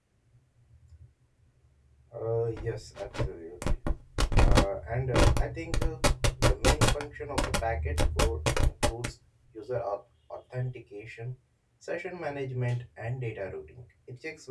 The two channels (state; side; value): identical; both; correlation 1.00